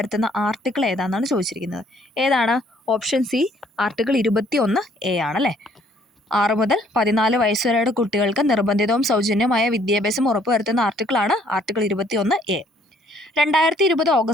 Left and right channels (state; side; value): normal; both; correlation 0.63